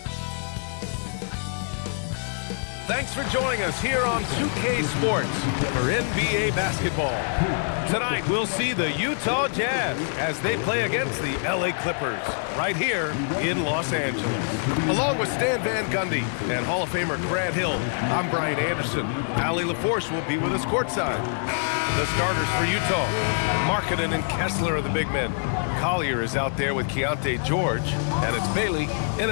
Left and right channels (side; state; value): right; silent; 61 dB below the other